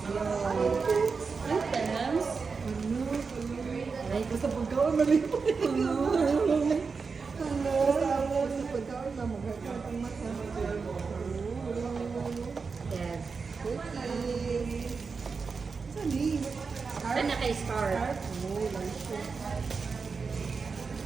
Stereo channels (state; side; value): quieter; left; 4.9 dB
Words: Items? Ay, basta pagkaon malipot. Basta pagkaon na magkakaroon ang mata. Yes. Cookie. Saan ni? Saan na kay Scar? Oh, lancho.